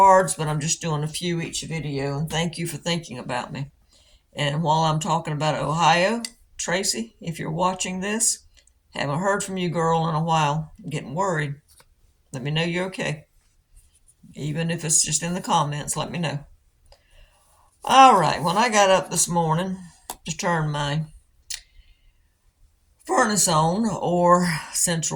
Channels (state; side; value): identical; both; correlation 1.00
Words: but I'm just doing a few each video, and thank you for thinking about me. And while I'm talking about Ohio, Tracy, if you're watching this, haven't heard from you, girl, in a while. I'm getting worried. Let me know you're okay. Even if it's just in the comments, let me know. All right, when I got up this morning to turn my furnace on, or